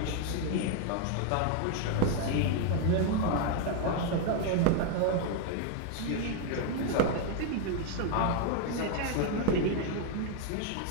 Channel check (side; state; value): both; different; correlation 0.00